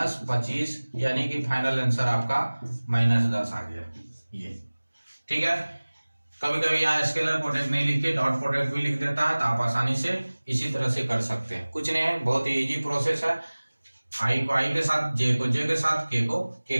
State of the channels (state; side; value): inverted; both; correlation -1.00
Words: यानी कि फाइनल आंसर आपका -10 आ गया ये। ठीक है, कभी कभी यहाँ स्केलर प्रोडक्ट नहीं लिखे, डॉट प्रोडक्ट भी लिख देता है, तो आप आसानी से इसी तरह से कर सकते हैं। कुछ नहीं है, बहुत ही इजी प्रोसेस है। आई को आई के साथ, जे को जे के साथ, के को